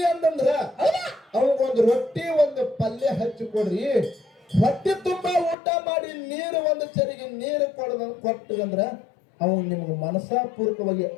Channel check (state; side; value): drops out; right; at 5.6 s